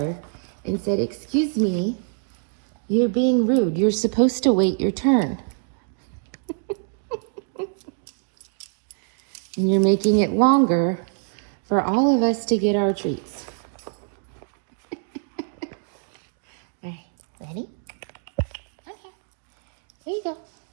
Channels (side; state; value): left; silent; 62 dB below the other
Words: and said, "Excuse me, you're being rude. You're supposed to wait your turn. And you're making it longer for all of us to get our treats." All right, ready? Okay, here you go.